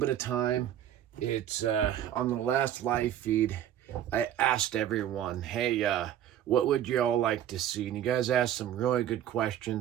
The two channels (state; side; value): quieter; left; 11.0 dB